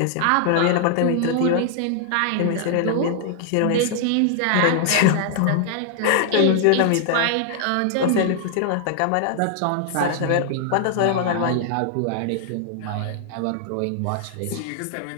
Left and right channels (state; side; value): different; both; correlation 0.00